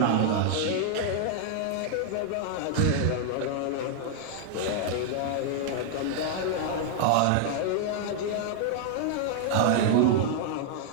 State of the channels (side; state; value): both; different; correlation -0.01